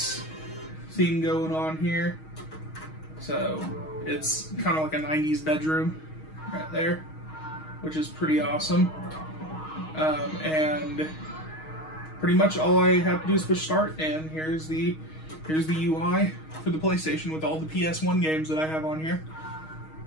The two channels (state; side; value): late; right; 6.4 ms